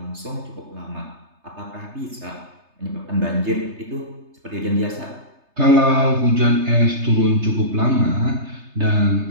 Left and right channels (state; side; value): late; left; 3.3 ms